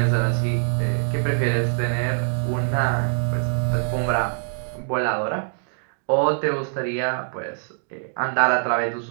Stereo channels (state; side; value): silent; left; digital silence